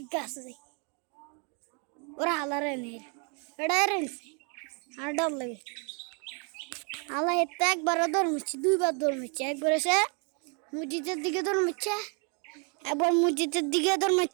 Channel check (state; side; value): quieter; left; 36.6 dB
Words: গাছে ওরা হালারে নেই এটা রেলছে আর ডর লাগে হালা এতে একবারও দৌড়মিচ্ছে দুইবার দৌড়মিচ্ছে একবার এসে মসজিদের দিকে দৌড়মিচ্ছে একবার মসজিদের দিকে